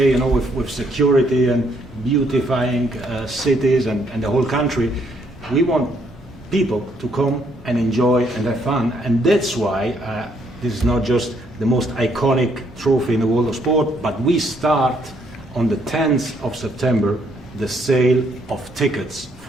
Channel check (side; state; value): both; normal; correlation 0.70